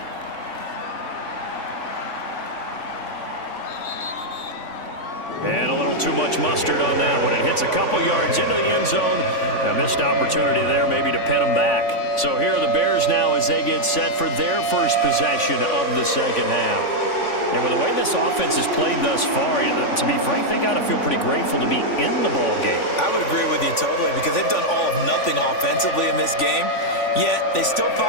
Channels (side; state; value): right; late; 3.5 ms